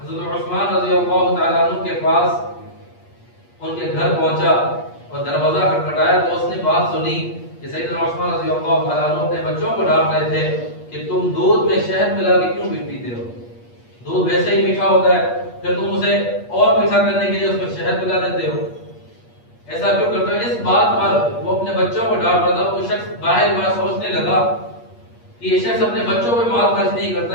حضرت عثمان رضی اللہ تعالیٰ عنہ کے پاس ان کے گھر پہنچا اور دروازہ کھٹکھٹایا تو اس نے بات سنی کہ سیدنا عثمان رضی اللہ تعالیٰ عنہ اپنے بچوں کو ڈانٹ رہے تھے کہ تم دودھ میں شہد ملا کے کیوں پیتے ہو؟ دودھ ویسے ہی میٹھا ہوتا ہے، پھر تم اسے اور میٹھا کرنے کے لیے اس میں شہد ملا دیتے ہو، ایسا کیوں کرتے ہو؟ اس بات پر وہ اپنے بچوں کو ڈانٹ رہا تھا. وہ شخص باہر بار سوچنے لگا کہ یہ شخص اپنے بچوں پہ مال خرچ نہیں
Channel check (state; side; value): late; right; 8.4 ms